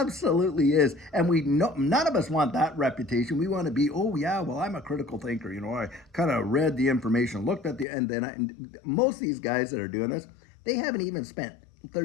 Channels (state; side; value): drops out; right; at 7.9 s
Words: is. And we know none of us want that reputation. We want to be, oh yeah, well, I'm a critical thinker. I kind of read the information, looked at and then most of these guys that are doing this, they haven't even spent